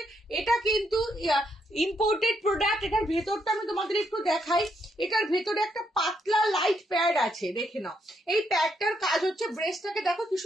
এটা কিন্তু ইম্পোর্টেড প্রোডাক্ট। এটার ভেতরটা আমি তোমাদের একটু দেখাই। এটার ভেতরে একটা পাতলা লাইট প্যাড আছে, দেখে নাও। এই প্যাডটার কাজ হচ্ছে, ব্রেস্টটাকে দেখো কি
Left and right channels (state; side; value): normal; both; correlation 0.76